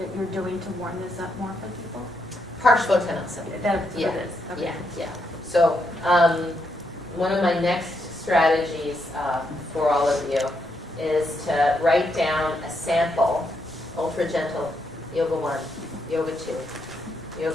you're doing to warm this up more for people? Parshvottanasana. That's what Yeah. it is. Okay. Yeah. So one of my next strategies for all of you is to write down a sample, ultra gentle, yoga 1, yoga 2,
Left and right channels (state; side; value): normal; both; correlation 0.79